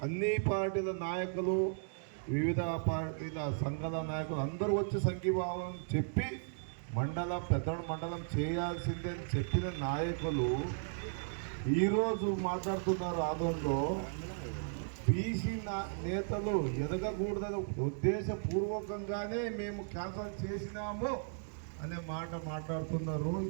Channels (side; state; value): left; silent; digital silence